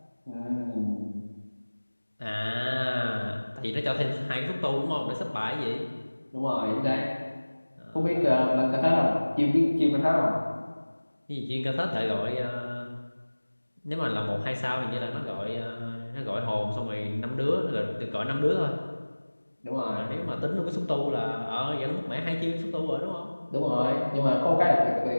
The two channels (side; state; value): both; inverted; correlation -1.00